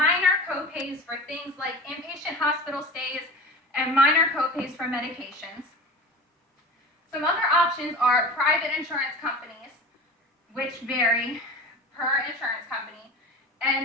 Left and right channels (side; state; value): both; normal; correlation 0.34